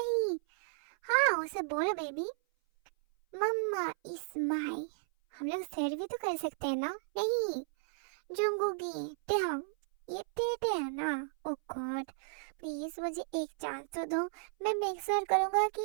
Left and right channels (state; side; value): silent; left; 55 dB below the other